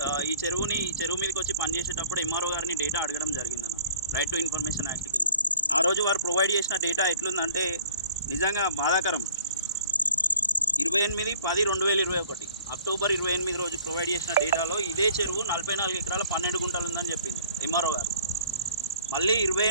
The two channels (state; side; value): inverted; both; correlation -0.51